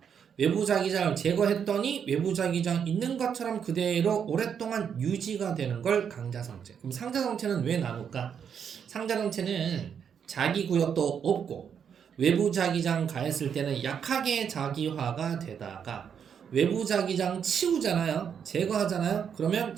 외부 자기장을 제거했더니 외부 자기장 있는 것처럼 그대로 오랫동안 유지가 되는 걸 강자성체. 그럼 상자성체는 왜 나눌까? 상자성체는 자기 구역도 없고 외부 자기장 가했을 때는 약하게 자기화가 되다가 외부 자기장 치우잖아요. 제거하잖아요. 그러면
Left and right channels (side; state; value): left; quieter; 7.6 dB